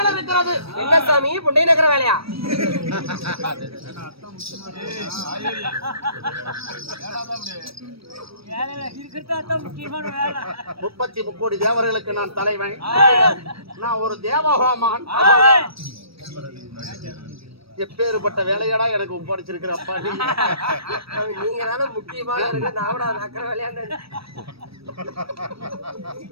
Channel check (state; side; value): late; left; 0.76 ms